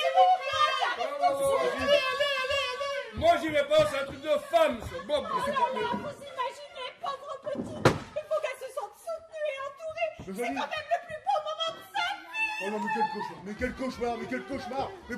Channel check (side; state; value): both; identical; correlation 1.00